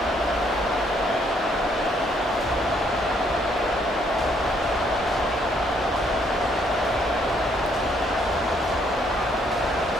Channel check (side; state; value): both; normal; correlation 0.68